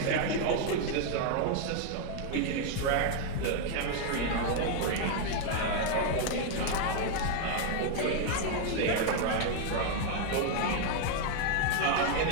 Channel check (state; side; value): different; both; correlation 0.00